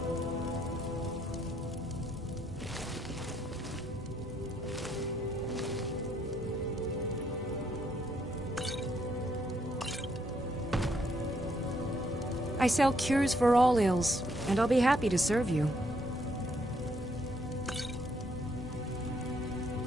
I sell cures for all ills, and I'll be happy to serve you.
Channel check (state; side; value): normal; both; correlation 0.72